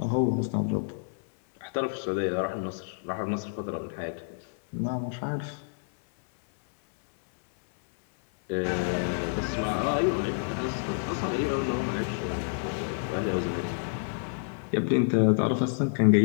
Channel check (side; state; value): right; silent; 59 dB below the other